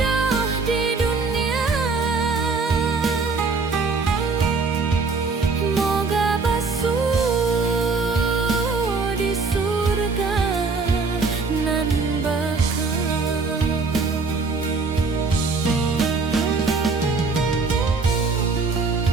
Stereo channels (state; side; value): quieter; left; 4.3 dB